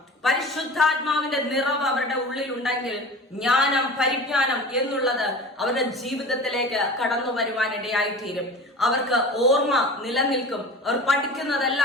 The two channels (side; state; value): both; normal; correlation 0.36